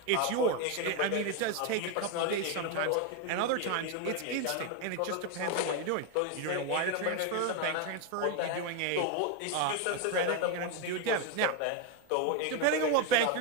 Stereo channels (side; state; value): both; different; correlation 0.02